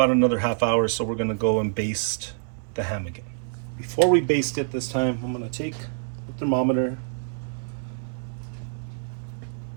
another half hour, so we're gonna go and baste the ham again. Before we baste it this time, I'm gonna take the thermometer,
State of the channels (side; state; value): left; silent; 61 dB below the other